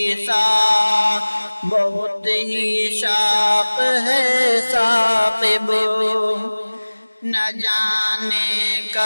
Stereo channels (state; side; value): inverted; both; correlation -1.00